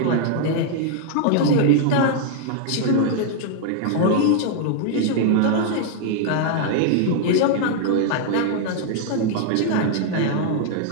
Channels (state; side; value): different; both; correlation 0.00